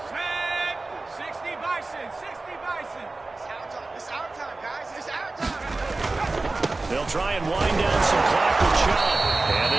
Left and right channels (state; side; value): quieter; left; 3.3 dB